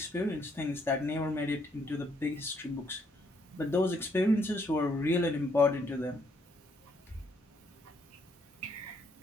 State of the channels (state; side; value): normal; both; correlation 0.71